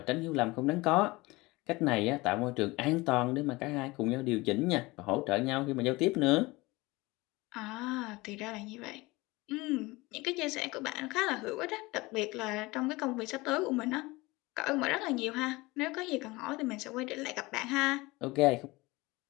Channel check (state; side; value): quieter; right; 22.1 dB